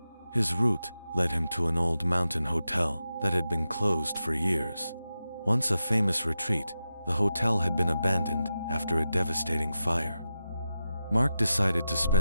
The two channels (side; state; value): both; inverted; correlation -0.89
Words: His route led him to an old mountain hotel that had been closed for years. Once a famous retreat, the hotel had been abandoned after a devastating fire. Mark decided to